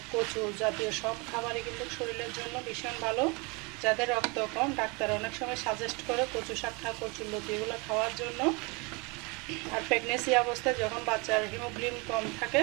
কচু জাতীয় সব খাবারই কিন্তু শরীরের জন্য ভীষণ ভালো। যাদের রক্ত কম, ডাক্তার অনেক সময় সাজেস্ট করে কচু শাক খা, কচুর লতি এগুলো খাওয়ার জন্য। আর প্রেগনেন্সি অবস্থায় যখন বাচ্চার হিমোগ্লোবিন কম থাকে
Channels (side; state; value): left; quieter; 29.0 dB